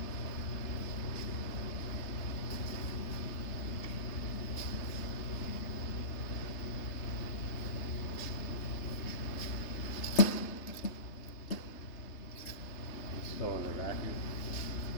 Still in the vacuum.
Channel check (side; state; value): right; late; 3.3 ms